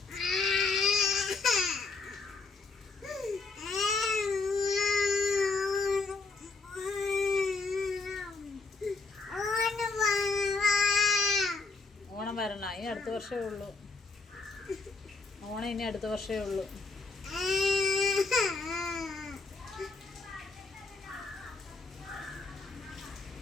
ഓണം വരണം, ഇനി അടുത്ത വർഷമേ ഉള്ളൂ. ഓണം ഇനി അടുത്ത വർഷമേ ഉള്ളൂ.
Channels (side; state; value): right; quieter; 3.9 dB